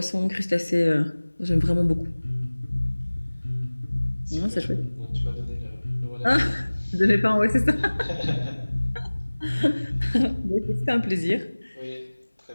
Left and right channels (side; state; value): both; inverted; correlation -1.00